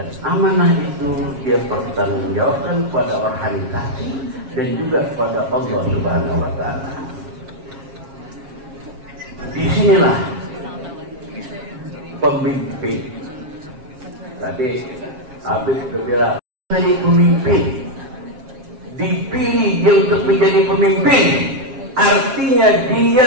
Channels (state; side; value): late; left; 7.4 ms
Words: amanah itu dia pertanggungjawabkan pada organisasi dan juga kepada Allah Subhanahu wa Ta'ala. Disinilah pemimpin. Tadi Habib bilang jadi pemimpin, dipilih dia untuk menjadi pemimpin, artinya dia